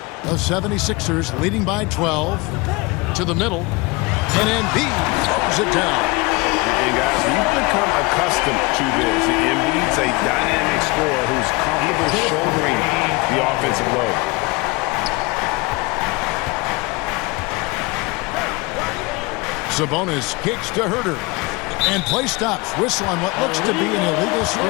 The 76ers leading by 12 to the middle. And Embiid throws it down. And guys, we've become accustomed to this. Embiid's a dynamic scorer who's comfortable shouldering the offensive load. Sabonis kicks to Herter. And play stops. Whistle on what looks to be an illegal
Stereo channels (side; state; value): right; quieter; 24.6 dB